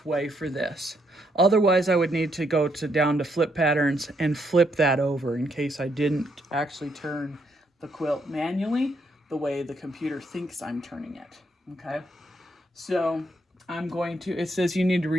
way for this. Otherwise, I would need to go down to flip patterns and flip that over in case I didn't actually turn the quilt manually the way the computer thinks I'm turning it, okay? So it says you need to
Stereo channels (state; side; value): normal; both; correlation 0.75